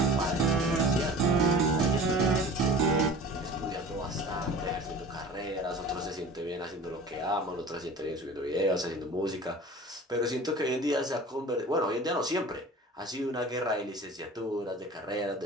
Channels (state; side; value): normal; both; correlation 0.41